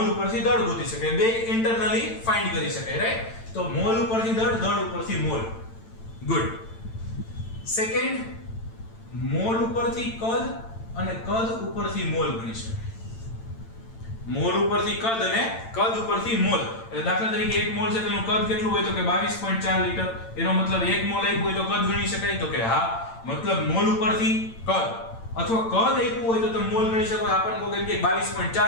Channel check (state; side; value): late; right; 8.9 ms